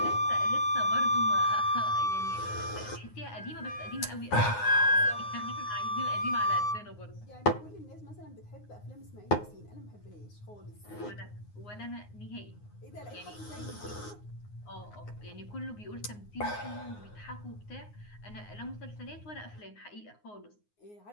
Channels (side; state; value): right; late; 9.6 ms